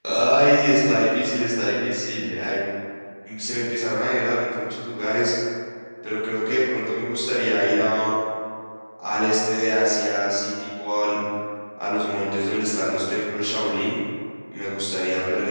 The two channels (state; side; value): inverted; both; correlation -1.00